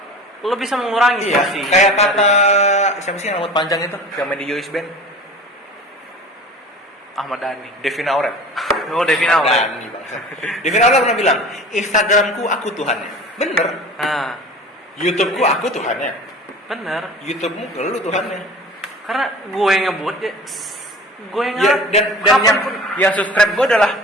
lo bisa mengurangi iya, porsi. kayak kata siapa sih yang rambut panjang itu yang main di Yois Band? Ahmad Dhani. Devina Aurel. Oh, Devina Aurel. Dhani, bangsa. Devina Aurel pernah bilang, Instagramku aku Tuhannya. Bener. Nah, YouTubeku aku Tuhannya. bener. YouTubemu lu Tuhannya. Karena gue yang ngebut ya, gue yang Ya, dan yang subscribe gue adalah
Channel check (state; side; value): normal; both; correlation 0.39